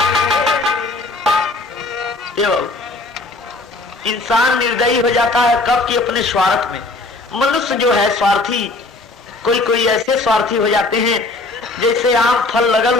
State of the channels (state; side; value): quieter; right; 3.2 dB